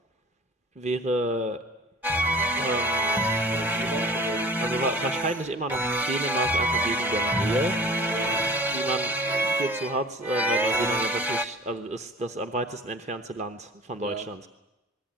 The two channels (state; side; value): normal; both; correlation 0.43